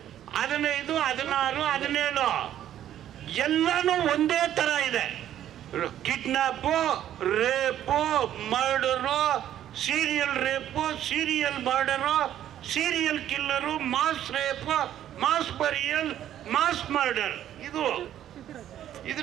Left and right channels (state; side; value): quieter; left; 11.4 dB